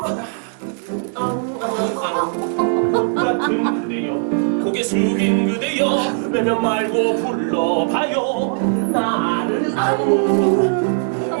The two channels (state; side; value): silent; left; 58 dB below the other